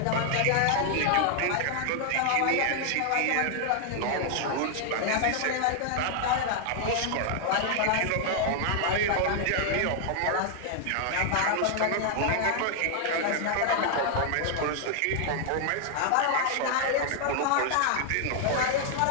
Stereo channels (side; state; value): both; different; correlation 0.00